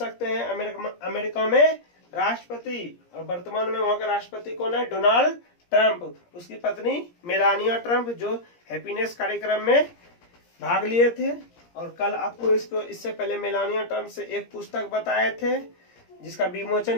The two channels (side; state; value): right; late; 17 ms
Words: हैं अमेरिका में राष्ट्रपति। और वर्तमान में वहां का राष्ट्रपति कौन है, डोनाल्ड ट्रंप। उसकी पत्नी मेलानिया ट्रंप, जो हैप्पीनेस कार्यक्रम में भाग लिए थे। और कल आपको इससे पहले मेलानिया ट्रंप से एक पुस्तक बताए थे जिसका